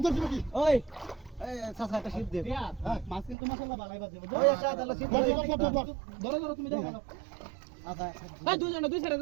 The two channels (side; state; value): left; drops out; at 3.4 s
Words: তুমি ওই এই সাসা একটা শিপ দে হ্যাঁ মাছ কিন্তু মাশাআল্লাহ ভালোই বাজে ওই একটা তাহলে শিপ ধরো তুমি দাও আচ্ছা এই দুই সাইডে